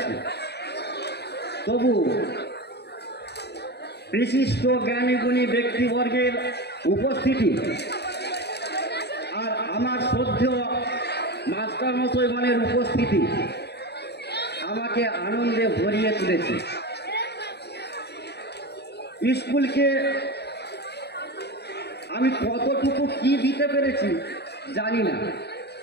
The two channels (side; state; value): right; late; 0.48 ms